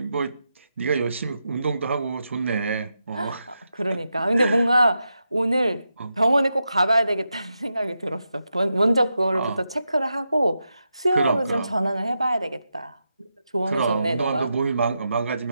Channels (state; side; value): inverted; both; correlation -0.87